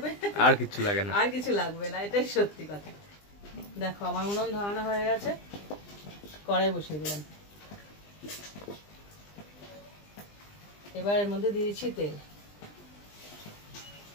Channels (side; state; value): right; late; 20 ms